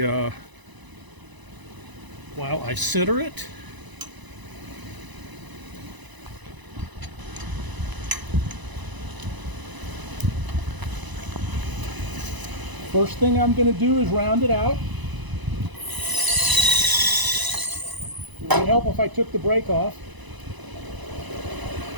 center it. First thing I'm going to do is round it out. It would help if I took the brake off.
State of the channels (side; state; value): left; late; 1.0 ms